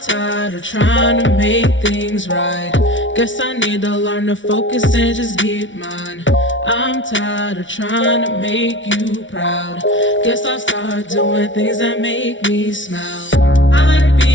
of trying to make things right. Guess I need to learn to focus and just keep mine. I'm tired of trying to make you proud. Guess I'll start doing things that make me smile. I like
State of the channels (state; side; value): late; right; 0.56 ms